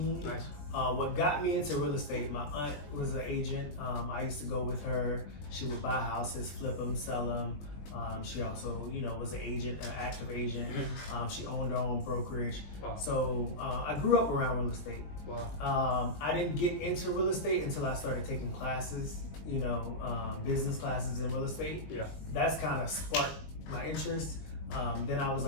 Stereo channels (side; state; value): right; late; 20 ms